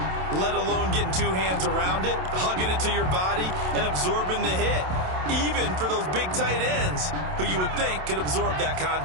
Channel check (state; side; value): late; left; 27 ms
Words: let alone getting 2 hands around it, hugging it to your body, and absorbing the hit, even for those big tight ends who you would think could absorb that